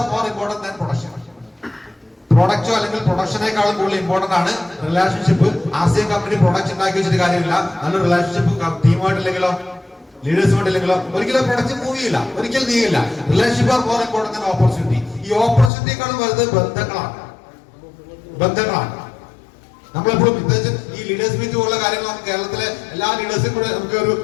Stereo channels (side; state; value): right; drops out; at 15.7 s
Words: more important than production. പ്രൊഡക്റ്റോ അല്ലെങ്കിൽ പ്രൊഡക്ഷനേക്കാളും കൂടുതൽ ഇമ്പോർട്ടന്റ് ആണ് റിലേഷൻഷിപ്പ്. ആർസിഎം കമ്പനി പ്രൊഡക്റ്റ് ഉണ്ടാക്കി വെച്ചിട്ട് കാര്യമില്ല. നല്ലൊരു റിലേഷൻഷിപ്പ് ടീമായിട്ടില്ലെങ്കിലോ ലീഡേഴ്സുമായിട്ടില്ലെങ്കിലോ ഒരിക്കലും പ്രൊഡക്റ്റ് മൂവ് ചെയ്യില്ല, ഒരിക്കലും നീങ്ങില്ല. Relationship are more important than opportunity. ഈ ഓപ്പർച്യൂണിറ്റിയേക്കാളും വലുത് ബന്ധങ്ങളാണ്. നമ്മളെപ്പോഴും പ്രത്യേകിച്ച് ഈ ലീഡേഴ്സ് മീറ്റ് പോലുള്ള കാര്യങ്ങൾ നമുക്ക് കേരളത്തിലെ എല്ലാ ലീഡേഴ്സും കൂടെ നമുക്ക്